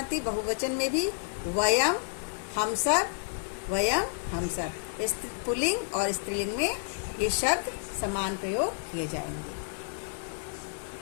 बहुवचन में भी वयम हम सब, वयम हम सब, पुल्लिंग और स्त्रीलिंग में ये शब्द समान प्रयोग किए जाएंगे।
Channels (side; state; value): right; silent; digital silence